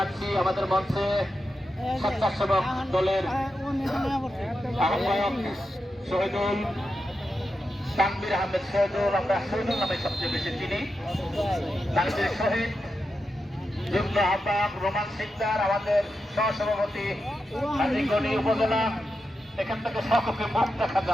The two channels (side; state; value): both; normal; correlation 0.88